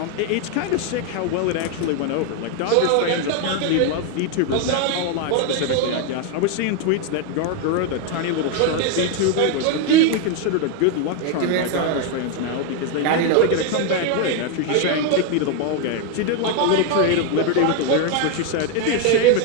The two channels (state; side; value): different; both; correlation 0.01